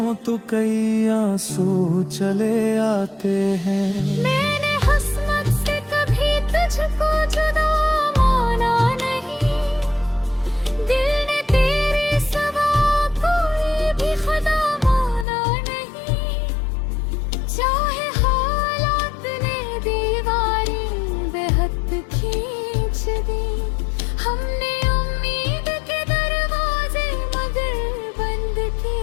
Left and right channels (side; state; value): right; drops out; at 15.2 s